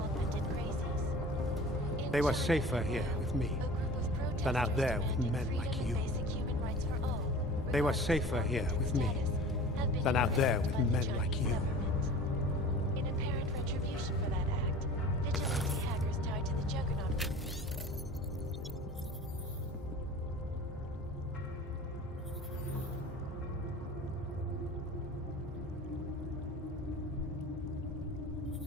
augmented crazies. In They were China, safer here with me a group of than out protesters there with demanding men freedom like and you. basic human rights for all, They were regardless of safer here origin with me status, have been than out there with by the men Chinese like you. government. In apparent retribution for that act, vigilante hackers tied to the Juggernaut group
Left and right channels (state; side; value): normal; both; correlation 0.41